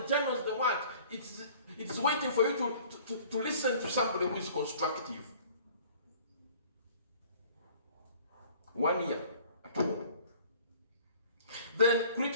journals, the what. It's waiting for you to listen to somebody who is constructive. 1 year at home. Then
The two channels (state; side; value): inverted; both; correlation -0.51